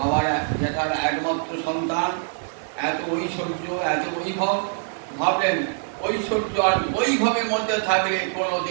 যেটার একমাত্র সন্তান, এত ঐশ্বর্য, এত বৈভব, ভাবলেন ঐশ্বর্য আর বৈভবের মধ্যে থাকলে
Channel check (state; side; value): silent; left; 61 dB below the other